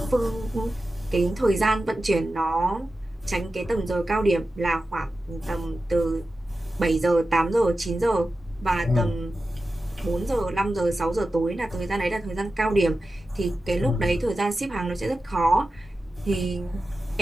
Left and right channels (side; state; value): both; normal; correlation 0.93